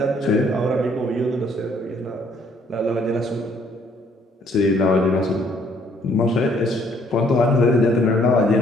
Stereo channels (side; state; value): both; normal; correlation 0.64